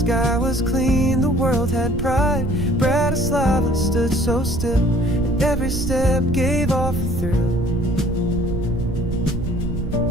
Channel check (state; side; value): noise; right; rumble, 4 dB below the sound